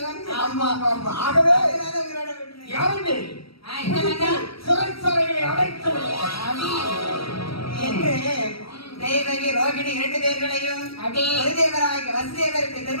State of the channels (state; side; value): late; right; 0.75 ms